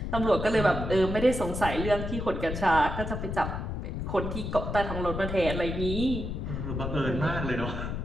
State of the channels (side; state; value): left; noise; rumble, 4 dB below the sound